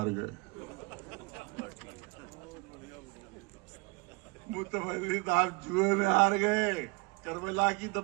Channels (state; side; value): quieter; left; 28.8 dB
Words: गए। मुतवल्ली साहब जुए में हार गए, करबला की